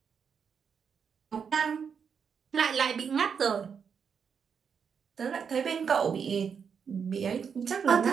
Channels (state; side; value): quieter; left; 6.7 dB